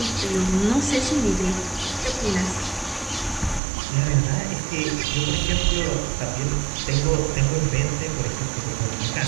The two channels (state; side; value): drops out; left; at 3.6 s